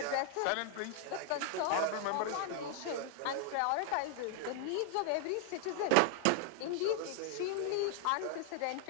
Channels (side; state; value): both; different; correlation 0.00